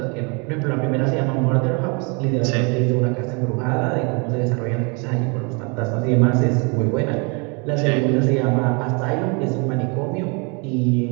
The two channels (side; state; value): left; quieter; 32.6 dB